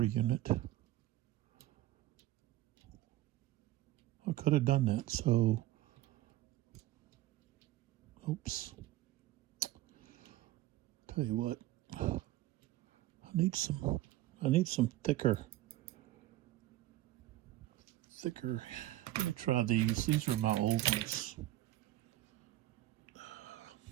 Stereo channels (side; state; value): left; quieter; 15.5 dB